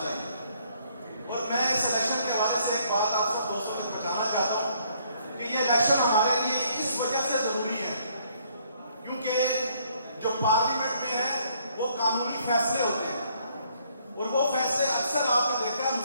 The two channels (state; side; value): inverted; both; correlation -0.66